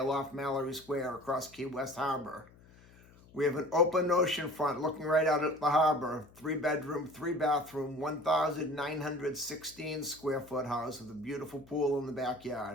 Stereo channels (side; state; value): left; noise; hum, 25 dB below the sound